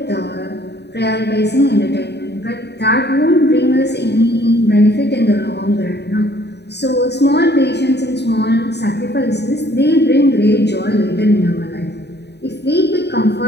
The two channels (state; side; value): late; right; 0.49 ms